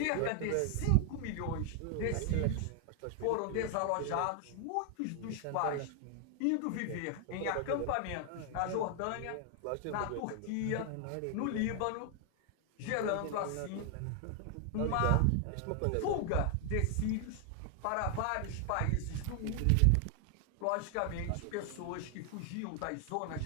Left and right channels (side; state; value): both; different; correlation 0.00